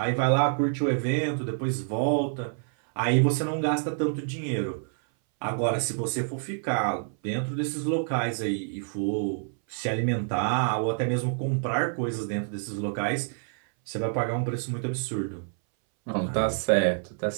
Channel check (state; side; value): silent; left; 60 dB below the other